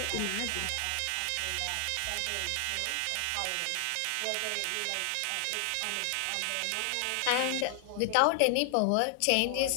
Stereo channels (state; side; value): different; both; correlation 0.00